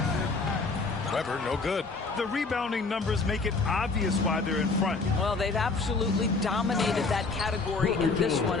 Weber, no good. The rebounding numbers make it obvious why they're in front. Well, they've absolutely dominated that category in this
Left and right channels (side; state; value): right; quieter; 4.0 dB